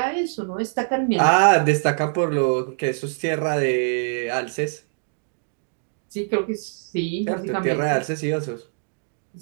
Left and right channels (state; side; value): silent; left; digital silence